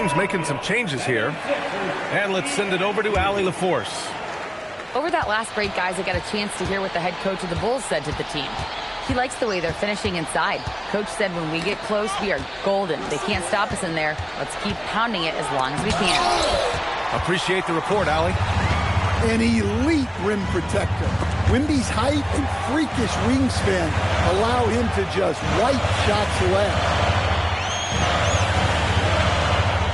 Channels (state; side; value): identical; both; correlation 1.00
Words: making some changes here. And let's send it over to Allie LaForce. Over that last break, guys, I got a chance to hear what the head coach of the Bulls said to the team. He likes the way they're finishing inside. Coach said when we get close, we are golden. They can't stop us in there. Let's keep pounding it as long as we can. Appreciate the report, Allie. An elite rim protector. Wemby's height and freakish wingspan allow him to just wipe shots away.